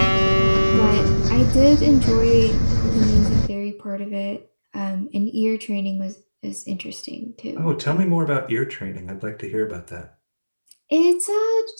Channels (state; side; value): inverted; both; correlation -1.00